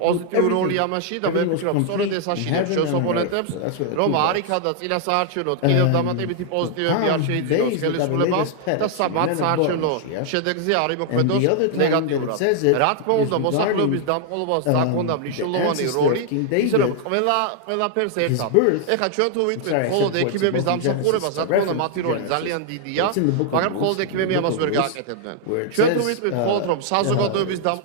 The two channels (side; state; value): both; different; correlation 0.00